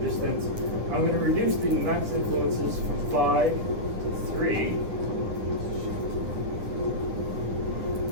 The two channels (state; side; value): late; left; 9.6 ms